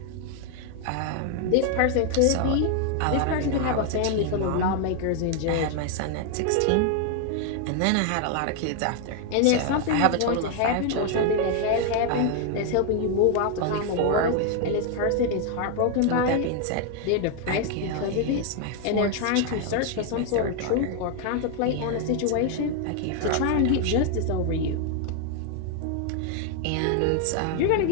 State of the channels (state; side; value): different; both; correlation 0.00